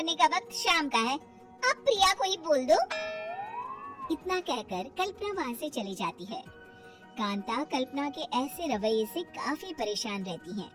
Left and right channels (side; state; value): both; identical; correlation 1.00